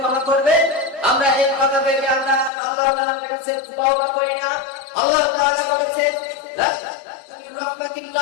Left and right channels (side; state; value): right; drops out; at 2.5 s